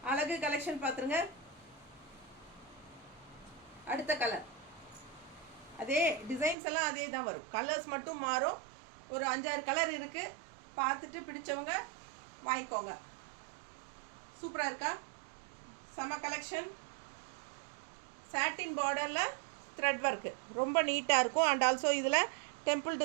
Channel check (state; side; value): drops out; left; at 6.6 s